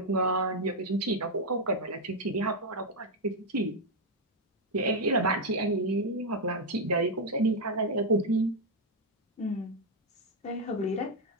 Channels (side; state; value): both; normal; correlation 0.01